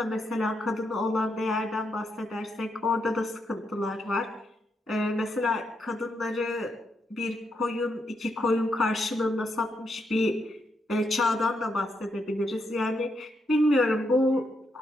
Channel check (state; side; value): normal; both; correlation 0.80